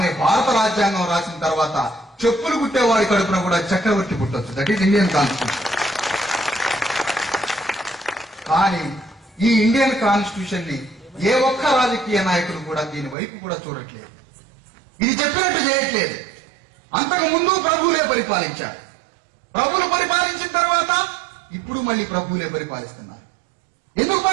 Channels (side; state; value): left; drops out; at 13.2 s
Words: భారత రాజ్యాంగం రాసిన తర్వాత చెప్పులు కుట్టేవాడి కడుపున కూడా చక్రవర్తి పుట్టొచ్చు. That is Indian constitution. కానీ ఈ ఇండియన్ కాన్స్టిట్యూషన్ ని ఏ ఒక్క రాజకీయ నాయకులు కూడా దీని వైపు కూడా చూడట్లేదు, ఇది చెప్పినట్టు చేయట్లేదు. అంతకు ముందు ప్రభువులే పరిపాలించారు, ప్రభువులు పరిపాలించిన తర్వాత ఇప్పుడు మళ్ళీ ప్రభువులే పరిపాలిస్తున్నారు. ఎందుకు